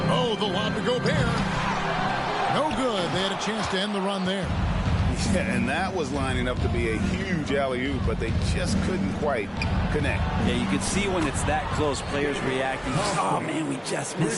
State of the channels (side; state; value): both; identical; correlation 1.00